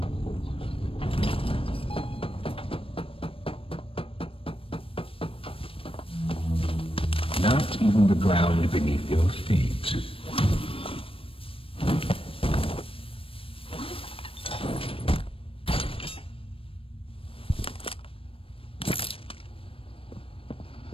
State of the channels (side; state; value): right; late; 0.27 ms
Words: Not even the ground beneath your feet.